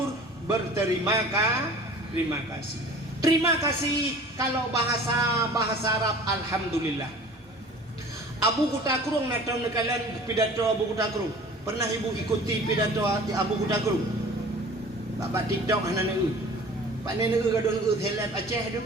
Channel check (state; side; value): normal; both; correlation 0.44